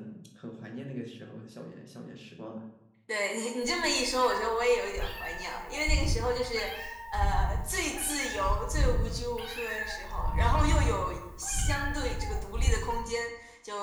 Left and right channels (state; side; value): identical; both; correlation 1.00